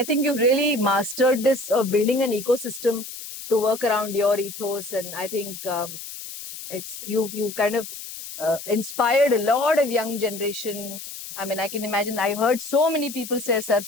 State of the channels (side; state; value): left; noise; hiss, 11 dB below the sound